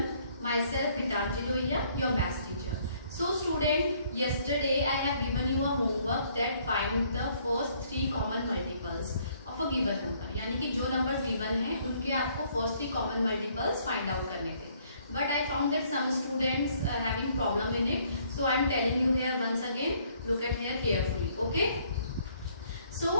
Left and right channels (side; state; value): both; inverted; correlation -0.64